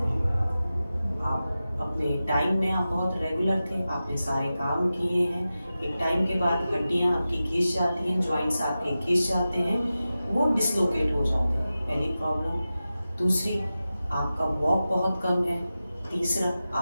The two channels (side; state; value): both; inverted; correlation -0.94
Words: आप अपने टाइम में आप बहुत रेगुलर थे, आपने सारे काम किए हैं, एक टाइम के बाद हड्डियां आपकी घिस जाती हैं, जॉइंट्स आपके घिस जाते हैं, वो डिसलोकेट हो जाते हैं, पहली प्रॉब्लम। दूसरी, आपका वॉक बहुत कम है। तीसरा,